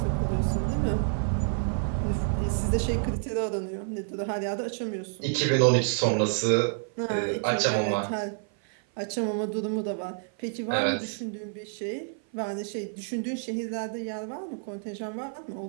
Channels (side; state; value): left; silent; 55 dB below the other